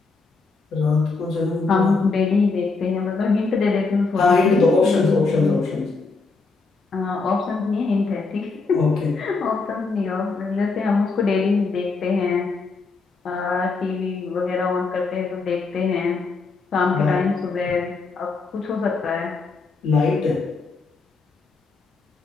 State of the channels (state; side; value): quieter; right; 4.1 dB